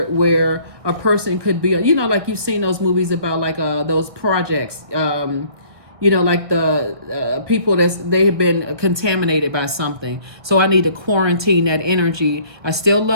a person could be, like you've seen those movies about like those projects, like the people they have been contaminated by something. So I need to quarantine that energy. I still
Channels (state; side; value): late; left; 1.6 ms